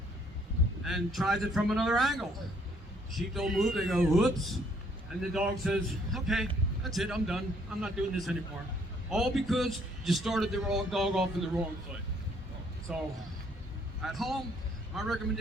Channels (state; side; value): normal; both; correlation 0.65